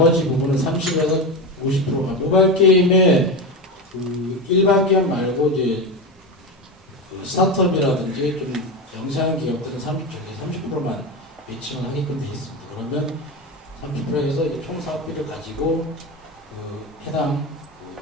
부분은 30에서 50%가 모바일 게임의 그 일반 기업 말고 이제 그 스타트업이라든지 좀 영세한 기업들은 30%만 매칭을 하게끔 되어 있습니다. 그러면 30%에서 총 사업비를 가지고 그 해당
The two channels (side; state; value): both; normal; correlation 0.19